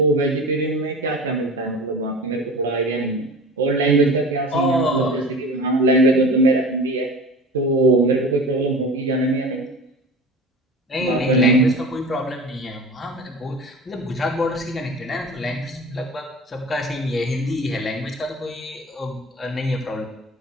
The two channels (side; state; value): both; normal; correlation 0.36